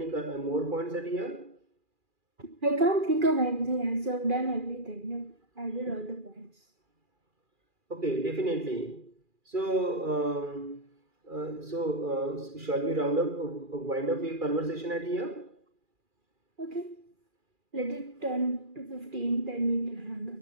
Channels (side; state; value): left; late; 2.4 ms